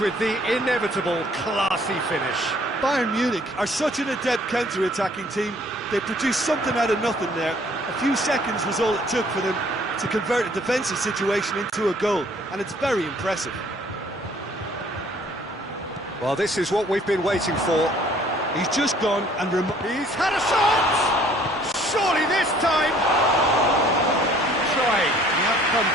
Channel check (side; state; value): both; normal; correlation 0.58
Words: with the inevitable classy finish. Bayern Munich are such an adept counter-attacking team. They produced something out of nothing there. A few seconds was all it took for them to convert a defensive situation into a goal, and it's very impressive. Well, this is what we've been waiting for. He's just gone and he's had a shot! Surely this time! Trying. The outcome